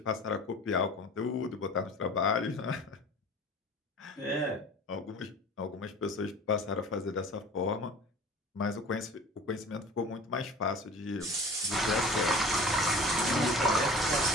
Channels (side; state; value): both; normal; correlation 0.41